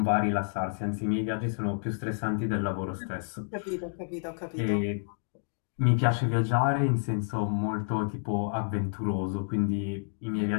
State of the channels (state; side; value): silent; right; digital silence